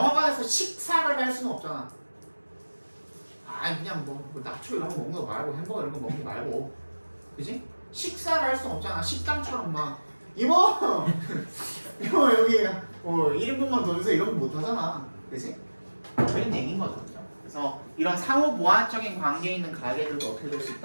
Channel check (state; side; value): inverted; both; correlation -1.00